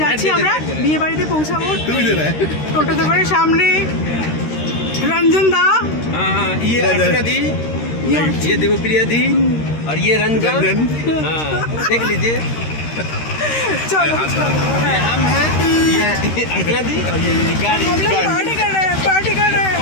যাচ্ছি আমরা বিয়ে বাড়িতে পৌঁছাবো। তুমি দে रहा है টোটোতে করে সামনে रंजन दा, हाँ ये अर्चना दी, ये देवप्रिया दी और ये रंजन। हाँ देख लीजिए, चलो ये हम हैं, ये अर्चना दी और ये गाड़ी। हम लोग पार्टी कर रहे हैं, पार्टी कर रहे हैं,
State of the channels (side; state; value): right; late; 13 ms